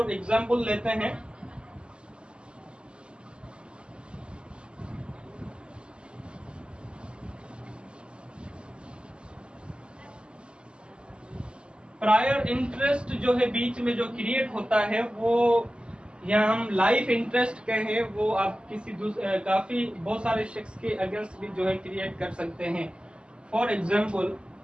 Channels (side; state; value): left; late; 0.051 ms